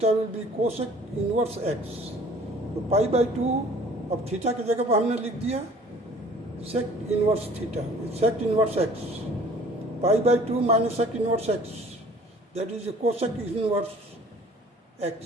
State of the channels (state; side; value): normal; both; correlation 0.51